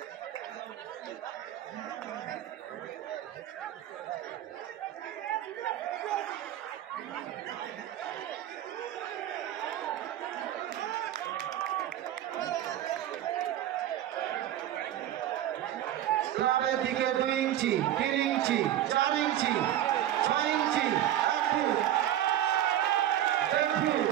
ক্লাবের দিকে 2 ইঞ্চি, 3 ইঞ্চি, 4 ইঞ্চি, 6 ইঞ্চি, 1 ফুট, 1 ফুট,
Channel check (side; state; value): left; quieter; 12.1 dB